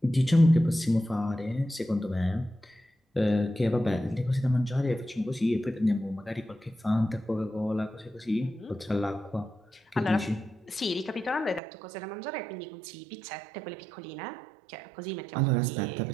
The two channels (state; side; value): drops out; left; at 11.6 s